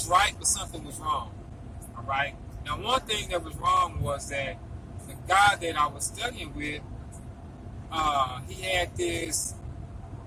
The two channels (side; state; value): both; identical; correlation 1.00